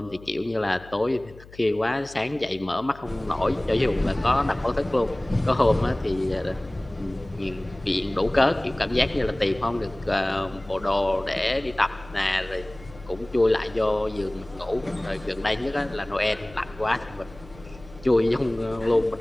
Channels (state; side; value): noise; left; hum, 20 dB below the sound